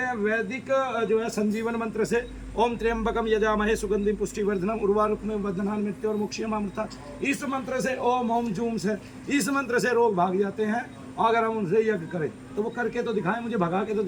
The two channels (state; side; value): identical; both; correlation 1.00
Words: वैदिक जो है संजीवन मंत्र से, ओम त्र्यंबकम यजामहे सुगंधिम पुष्टिवर्धनम उर्वारुकमिव बद्धनान् मृत्योर मुक्षयमामृता, इस मंत्र से, ओम ओम जूम से, इस मंत्र से रोग भाग जाते हैं। अगर हम उनसे यज्ञ करें तो वो करके तो दिखाए, मुझे भगा के तो